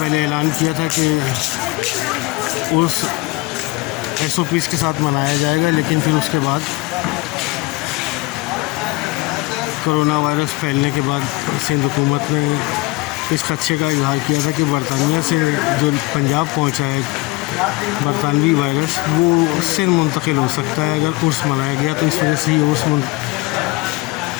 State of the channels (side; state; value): right; quieter; 22.4 dB